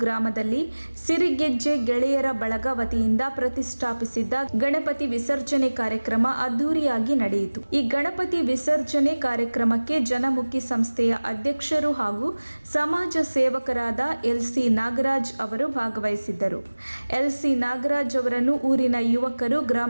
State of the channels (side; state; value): both; inverted; correlation -1.00